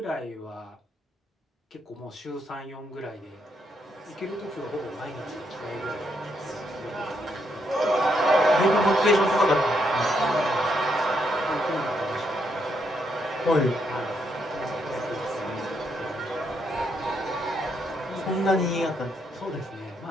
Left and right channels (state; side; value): normal; both; correlation 0.77